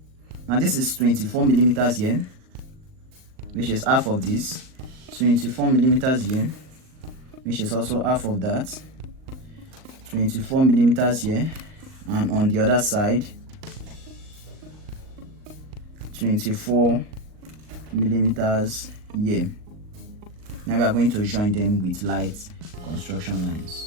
Now this is 24 millimeters here, which is half of this. 24 millimeters here, which is also half of that. 24 millimeters here, and on the other side 24 millimeters here. Now we are going to join them with light construction lines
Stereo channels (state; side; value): late; left; 39 ms